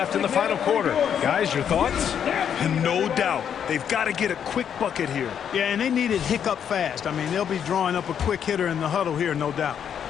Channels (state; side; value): quieter; right; 8.4 dB